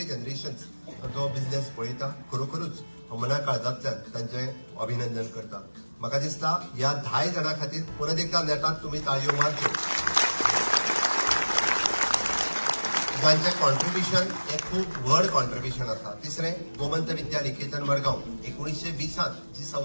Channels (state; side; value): inverted; both; correlation -1.00